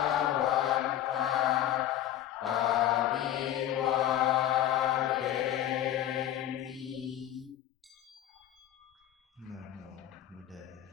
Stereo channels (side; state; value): right; quieter; 12.0 dB